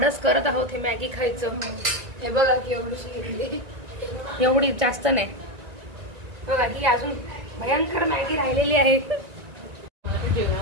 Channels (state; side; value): late; left; 1.9 ms